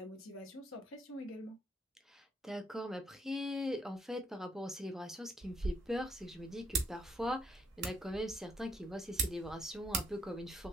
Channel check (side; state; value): both; normal; correlation 0.70